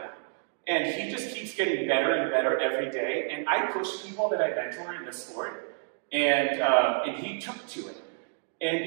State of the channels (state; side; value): silent; left; 58 dB below the other